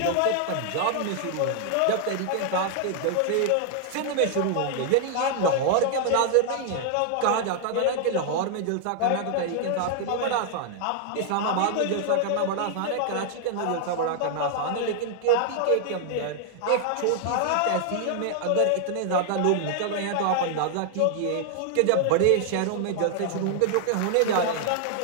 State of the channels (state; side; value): different; both; correlation 0.00